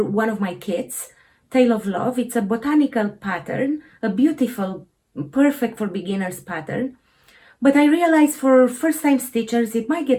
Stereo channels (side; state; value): both; identical; correlation 1.00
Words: one of my kits, Tale of Love. It's a botanical pattern, a beautiful, perfect for beginners pattern. But I realize for first-time stitchers, it might